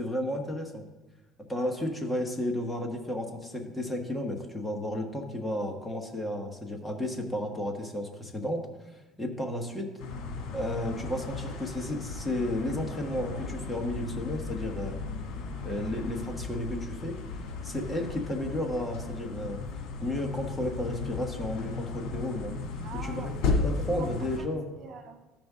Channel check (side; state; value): both; normal; correlation 0.51